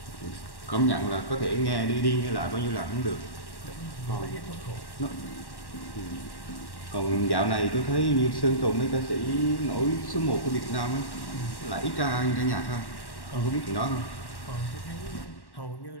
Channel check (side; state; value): right; late; 1.1 ms